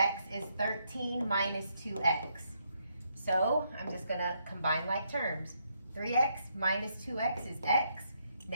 is 13 minus 2x. So I'm just going to combine like terms. 3x minus 2x is x.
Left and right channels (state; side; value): inverted; both; correlation -0.76